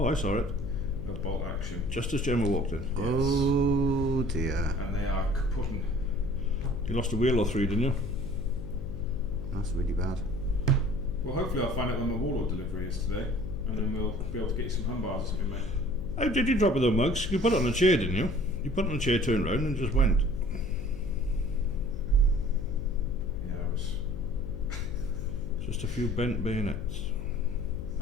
I saw it. of bolt action, Just as Gemma walked in. Oh dear. and they are kaputting. You lost a wheel or three, didn't you? That's really bad. Well, hopefully I'll find out when my Warlord delivery is today, and then we'll be able to get you some hum bars or something, mate. How did you drop it though, Muggs? You put it on a chair, didn't you? You put it on a chair, turned round and just went. Yeah, I was. Just a few bent bayonets.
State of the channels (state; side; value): noise; left; hum, 11 dB below the sound